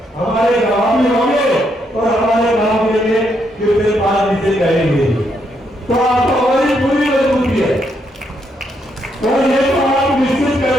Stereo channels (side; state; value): both; normal; correlation 0.76